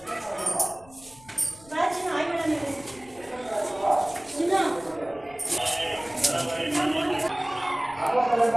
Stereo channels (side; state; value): left; noise; rumble, 24 dB below the sound